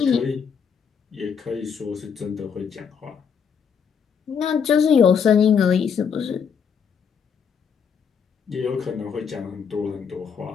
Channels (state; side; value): quieter; right; 6.8 dB